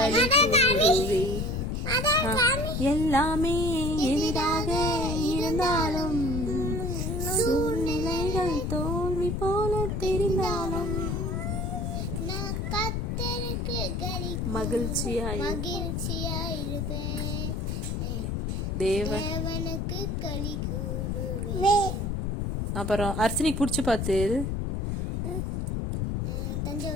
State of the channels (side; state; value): left; noise; rumble, 1 dB below the sound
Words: கூறுவேன். எல்லாமே எளிதாக இருந்தாலும், சூழ்நிலைகள் தோல்வி போல தெரிந்தாலும், மகிழ்ச்சியாயிருப்பேன், தேவனுக்கு களி கூறுவேன். அப்புறம் அர்ச்சனைக்கு பிடிச்சி பார்த்து